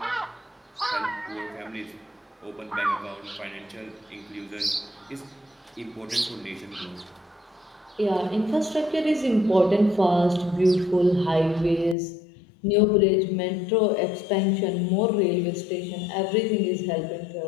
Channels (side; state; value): right; drops out; at 12.0 s